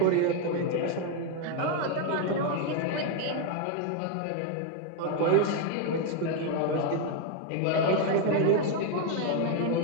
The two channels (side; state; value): both; different; correlation 0.01